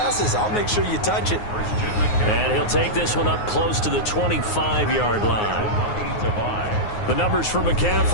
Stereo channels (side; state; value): right; late; 9.5 ms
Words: I'll make sure you touch it. And he'll take this one up close to the 25-yard line. The numbers for